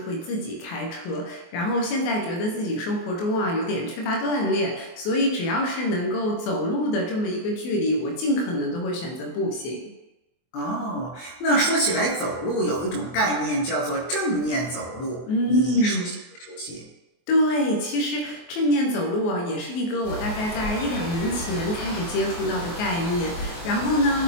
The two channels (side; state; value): right; late; 24 ms